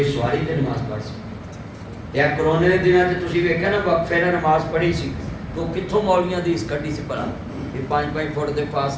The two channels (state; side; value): identical; both; correlation 1.00